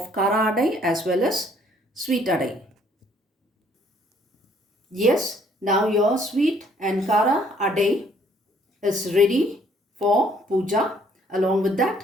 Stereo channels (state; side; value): normal; both; correlation 0.63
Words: kara adai as well as sweet adai. Yes, now your sweet and kara adai is ready for puja. Along with